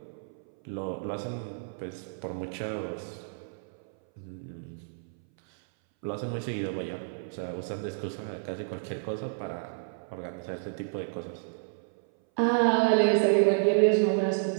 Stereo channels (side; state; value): left; silent; 58 dB below the other